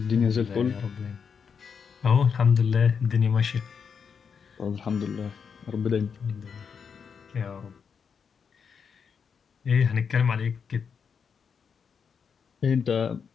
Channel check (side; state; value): right; quieter; 6.4 dB